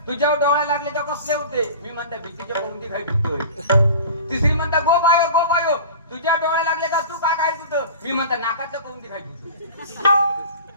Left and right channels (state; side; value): inverted; both; correlation -0.38